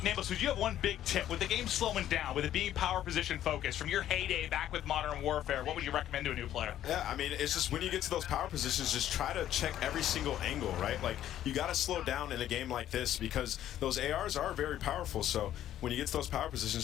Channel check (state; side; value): quieter; right; 11.9 dB